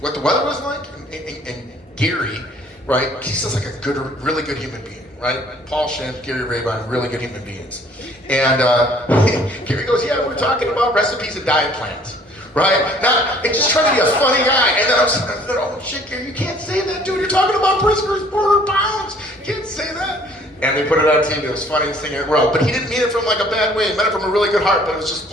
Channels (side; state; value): both; normal; correlation 0.57